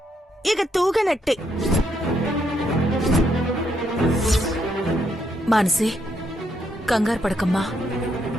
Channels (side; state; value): both; normal; correlation 0.76